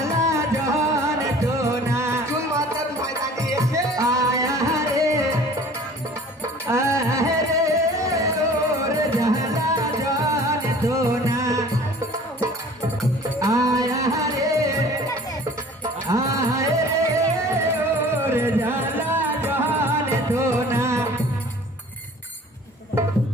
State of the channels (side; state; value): both; normal; correlation 0.47